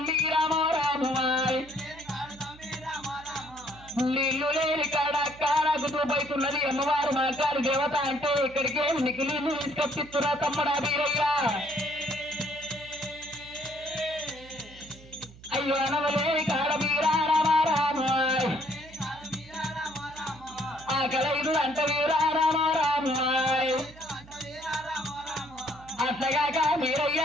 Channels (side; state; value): right; noise; hum, 21 dB below the sound